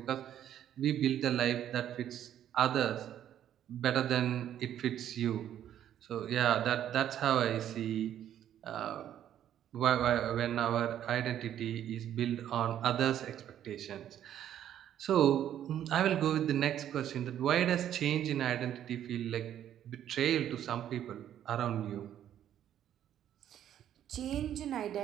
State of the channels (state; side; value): quieter; left; 10.7 dB